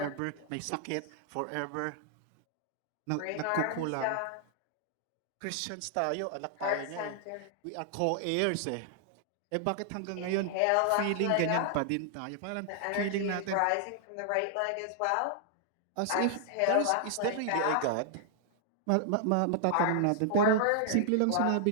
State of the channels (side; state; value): both; different; correlation -0.01